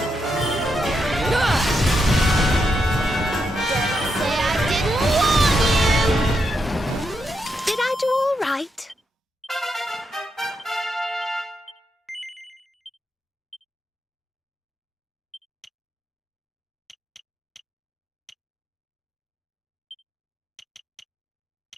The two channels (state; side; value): normal; both; correlation 0.82